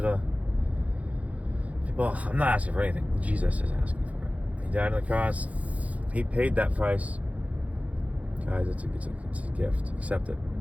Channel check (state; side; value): late; left; 0.068 ms